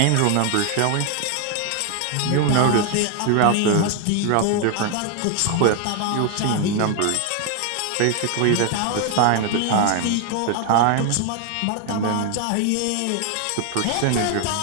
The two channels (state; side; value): different; both; correlation 0.01